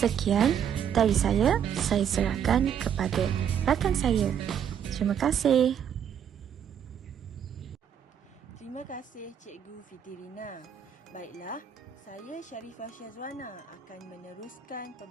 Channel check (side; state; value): left; quieter; 8.5 dB